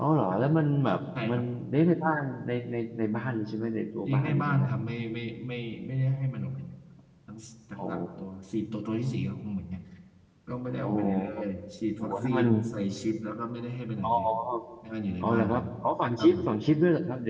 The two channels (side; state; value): both; identical; correlation 1.00